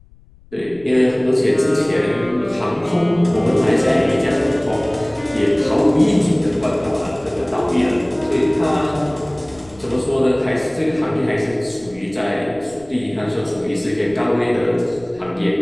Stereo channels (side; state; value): left; noise; rumble, 26 dB below the sound